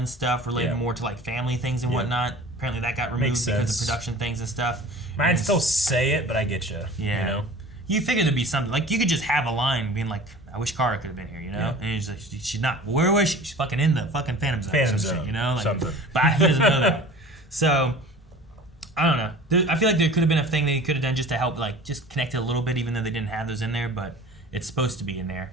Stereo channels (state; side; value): normal; both; correlation 0.42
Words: stuff related more to like family things and whatnot. Apparently that got removed because of production things and stuff. I'd still say it, but I get you. Yeah. You figured there'd be something like you could just have a line being like, "I wish Kara could have been here," And he's like, "She's not. Where was she? She's fucking in the fucking Phantom Zone." Phantom Zone, shit, Like, something. But he doesn't know that. So I don't know. I feel like there could have been a thing they could have done just to help, like, just connect it a little bit, even though they didn't have those in there. But it's supposed to be in there.